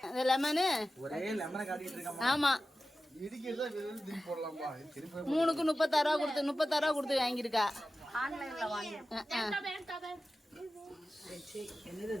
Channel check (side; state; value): both; normal; correlation 0.94